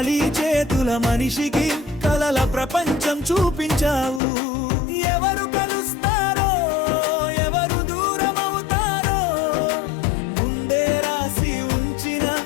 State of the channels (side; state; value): right; drops out; at 4.2 s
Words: చేతుల మనిషికి కలల ప్రపంచం చూపించావు. ఎవరు కలుస్తారో ఎవరు దూరం అవుతారో ముందే రాసి ఉంచిన